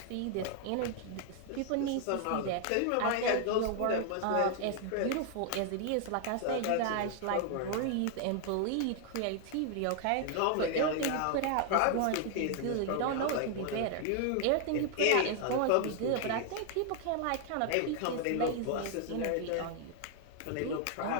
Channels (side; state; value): both; different; correlation 0.00